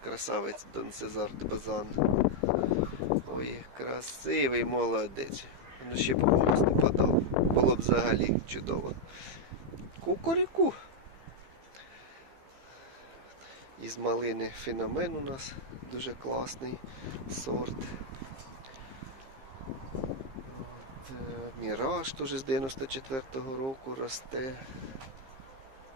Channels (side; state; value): left; late; 15 ms